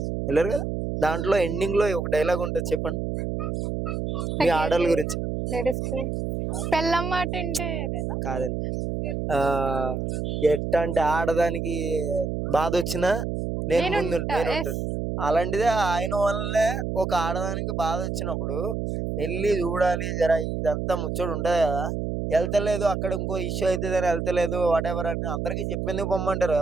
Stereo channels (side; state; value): right; noise; hum, 2 dB below the sound